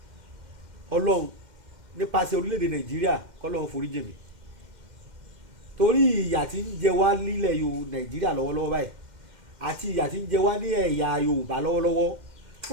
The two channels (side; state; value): left; late; 2.1 ms